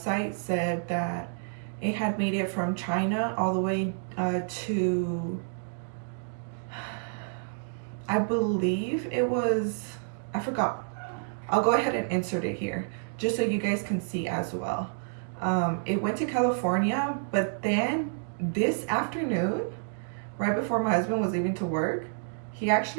said that it had made it from China all the way to, I believe it was, I forgot. I'll go ahead and insert it here just so you guys can see as well. It went to California, but then this afternoon, right before my husband was leaving to work, he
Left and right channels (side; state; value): left; silent; digital silence